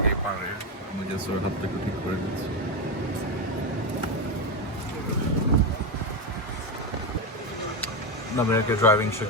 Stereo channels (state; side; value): normal; both; correlation 0.11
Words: পারে, আমি জাস্ট ওর হাত থেকে ঠিক করে দিচ্ছি। নামিয়াকে ড্রাইভিং